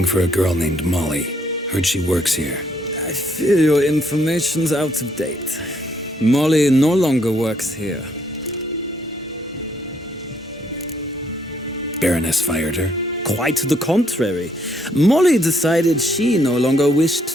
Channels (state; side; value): normal; both; correlation 0.70